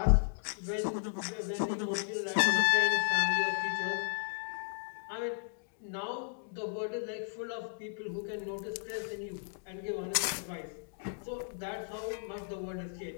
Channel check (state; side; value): silent; right; digital silence